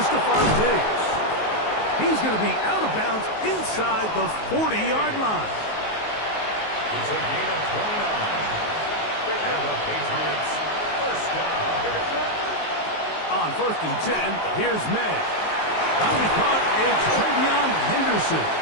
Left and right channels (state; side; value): late; right; 19 ms